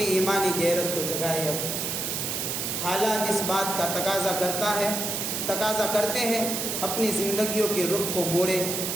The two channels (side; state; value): right; noise; hiss, 2 dB below the sound